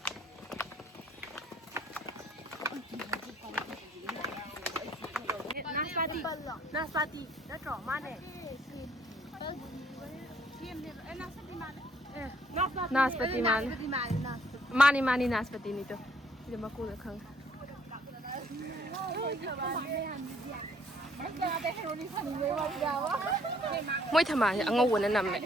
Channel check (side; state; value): both; normal; correlation 0.63